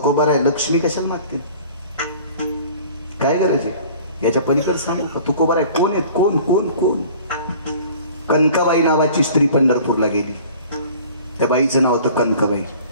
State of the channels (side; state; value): both; inverted; correlation -0.47